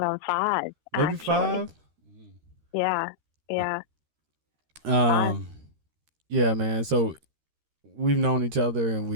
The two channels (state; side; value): late; left; 13 ms